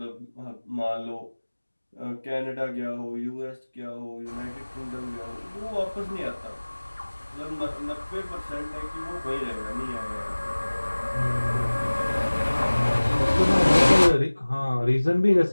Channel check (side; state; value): both; inverted; correlation -1.00